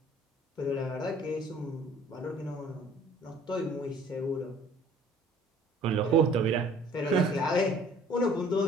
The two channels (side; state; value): both; normal; correlation 0.54